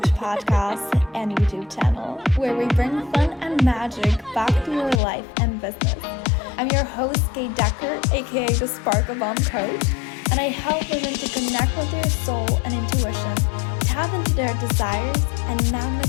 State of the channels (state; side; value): drops out; right; at 5.0 s